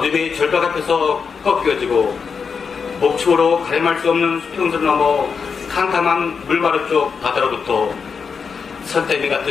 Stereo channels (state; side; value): quieter; right; 5.8 dB